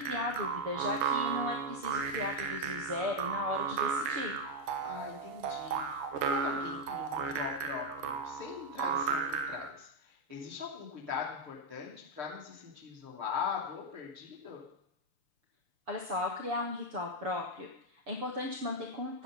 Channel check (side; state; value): left; late; 6.9 ms